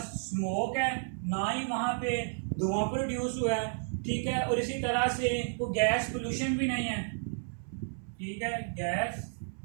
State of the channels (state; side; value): silent; left; 56 dB below the other